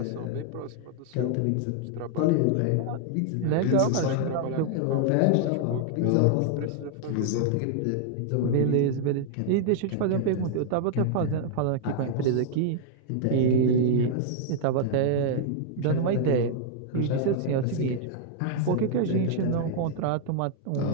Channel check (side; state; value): both; different; correlation -0.01